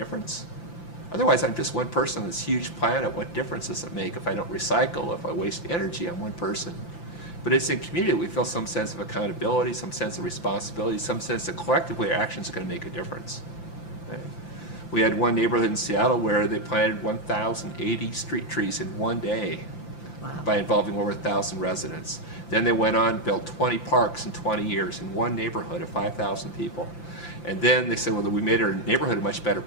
Otherwise, I'm just one person on this huge planet. What difference does it make if I don't recycle, if I waste energy on one person? But it's in community that we feel some sense of accountability, some sense of responsibility, some sense that collectively our actions are going to make a difference. Right? We had one neighborhood in Seattle where they planted 1,080 street trees in one day. Wow. By involving over 1,000 residents. Then they went on and built 20 parks in 20 years in one neighborhood of 5,000 people. And then they said, well, we made our neighborhood a much better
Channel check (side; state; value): right; late; 5.9 ms